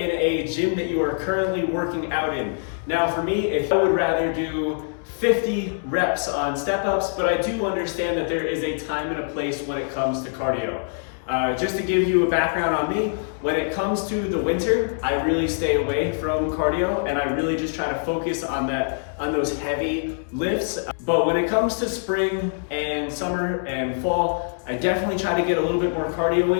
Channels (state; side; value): silent; right; digital silence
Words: a gym that you are currently working out in. Now for me, if I would rather do 50 reps on step-ups, but I do understand that there is a time and a place when it comes to cardio. Just to give you a background on me, when it comes to the winter, I really stay away from cardio and I really just try to focus on those heavy lifts. But when it comes to spring and summer and fall, I definitely try to get a little bit more cardio